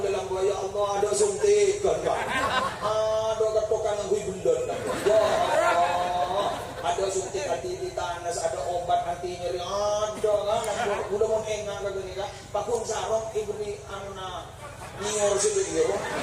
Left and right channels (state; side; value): identical; both; correlation 1.00